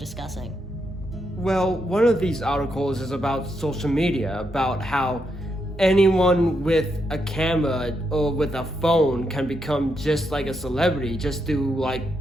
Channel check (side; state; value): both; normal; correlation 0.81